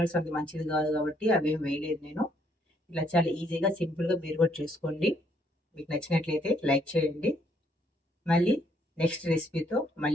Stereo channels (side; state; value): both; normal; correlation 0.69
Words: అంత మంచిది కాదు కాబట్టి అవేం వేయలేదు నేను. ఇలా చాలా ఈజీగా సింపుల్గా మీరు కూడా చేసుకోండి. మీకు నచ్చినట్లయితే లైక్ చేయండి. మళ్ళీ నెక్స్ట్ రెసిపీతో